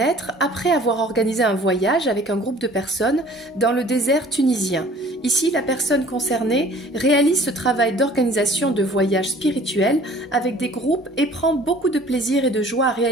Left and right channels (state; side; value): normal; both; correlation 0.51